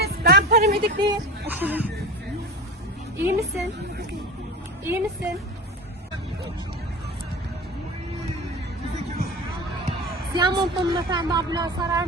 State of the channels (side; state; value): both; normal; correlation 0.31